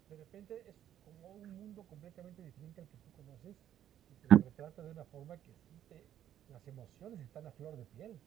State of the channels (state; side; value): quieter; left; 11.0 dB